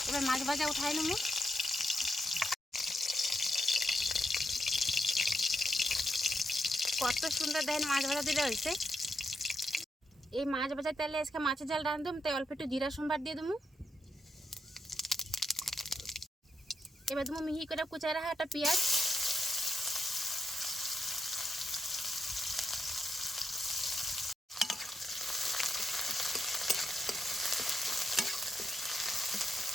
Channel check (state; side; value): normal; both; correlation 0.84